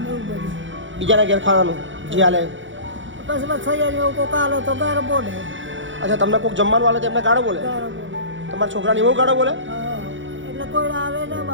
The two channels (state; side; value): late; left; 0.56 ms